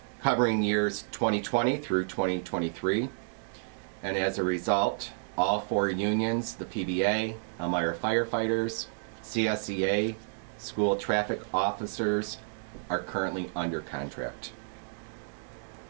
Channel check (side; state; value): left; silent; digital silence